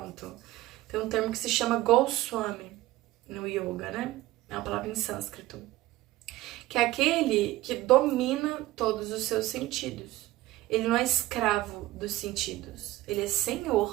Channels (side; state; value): left; quieter; 17.0 dB